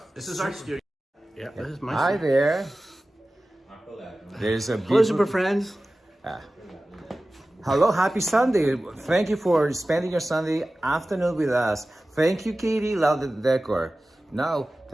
This is our studio. Yeah, this is my Hi studio. there. There's a Hello, beautiful. super friends. Hello. Happy Sunday. Thank you for spending your Sunday afternoon with us. Thank you, Katie. Love the decor. Now,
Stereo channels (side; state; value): both; normal; correlation 0.96